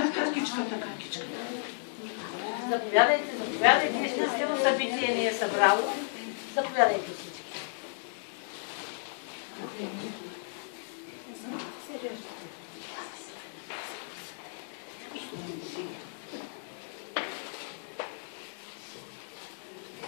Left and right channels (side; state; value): right; silent; digital silence